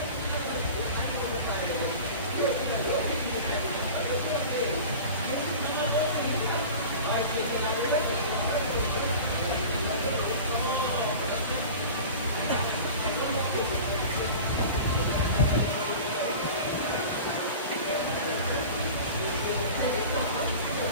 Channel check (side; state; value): both; inverted; correlation -0.36